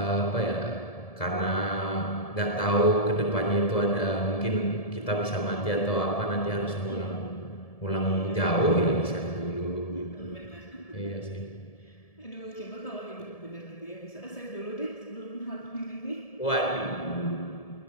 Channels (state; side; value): late; right; 1.7 ms